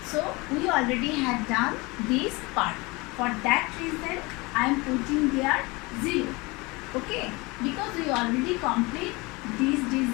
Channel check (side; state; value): right; quieter; 24.8 dB